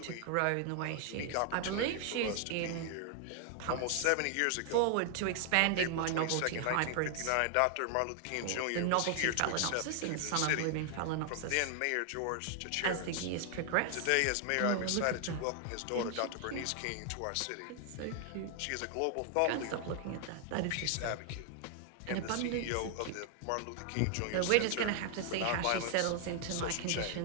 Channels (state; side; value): different; both; correlation 0.00